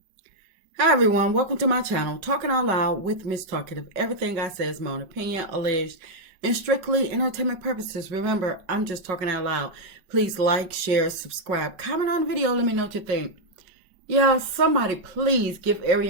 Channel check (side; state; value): left; late; 5.4 ms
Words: Hi everyone, welcome to my channel, Talking Out Loud with Miss Talkative. Everything I say is my own opinion, alleged, and strictly entertainment purposes. Remember, I'm just talking out loud. Please like, share, subscribe, comment on the video, let me know what you think. Yeah, somebody please give